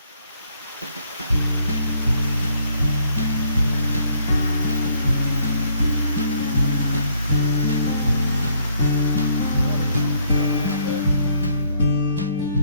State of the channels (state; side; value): inverted; both; correlation -0.66